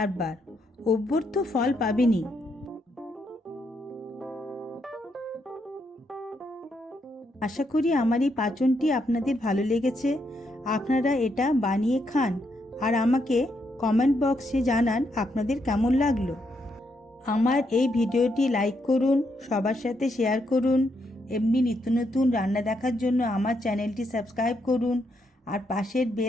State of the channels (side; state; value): both; normal; correlation 0.78